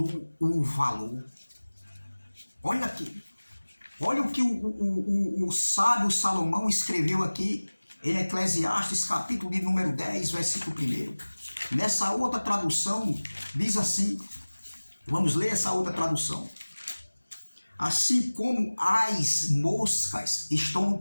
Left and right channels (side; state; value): both; inverted; correlation -1.00